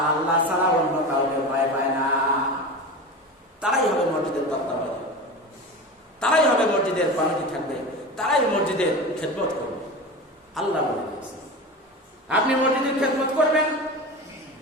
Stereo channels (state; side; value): normal; both; correlation 0.28